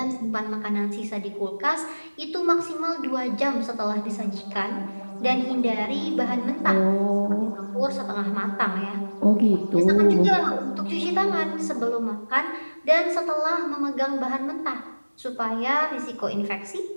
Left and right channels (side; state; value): both; inverted; correlation -1.00